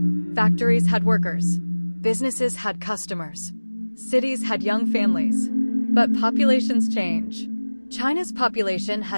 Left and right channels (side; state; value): both; inverted; correlation -1.00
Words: Factories had workers. Businesses had customers. Cities had young families. But populations change. China's population